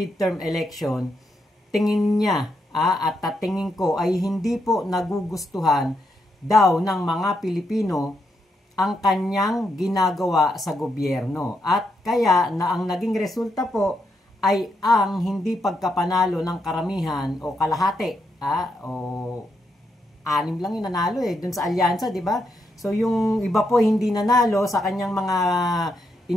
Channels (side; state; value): both; normal; correlation 0.81